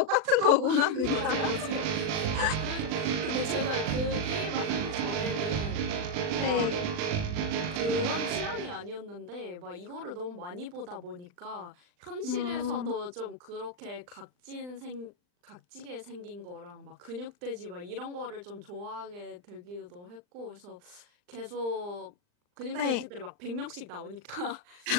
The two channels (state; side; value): late; left; 39 ms